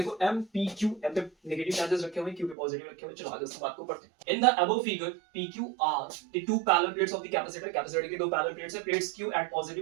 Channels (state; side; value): drops out; left; at 2.6 s